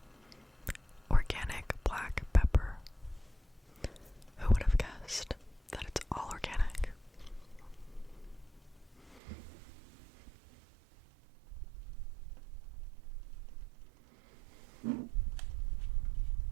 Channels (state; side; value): drops out; left; at 9.2 s